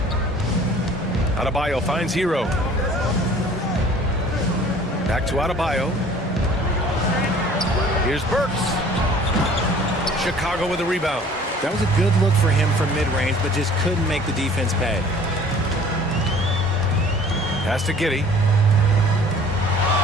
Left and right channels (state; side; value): normal; both; correlation 0.50